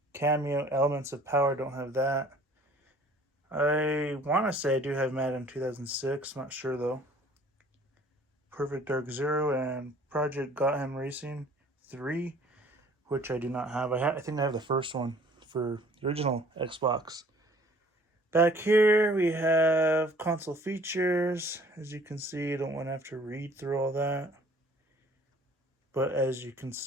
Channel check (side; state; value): both; normal; correlation 0.53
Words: Cameo, Elements of Power, don't have that. I want to say I do have Madden 2006, not sure though. Perfect Dark Zero and Project Gotham Racing 3, which I do not have. I think I have the first one for the original Xbox. Back here we have console features. As you can see, I don't want to have to read through all that. But as you can